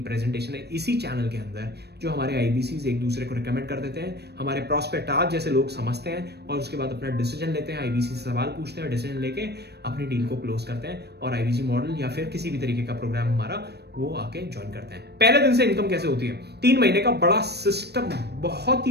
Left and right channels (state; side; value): late; left; 0.48 ms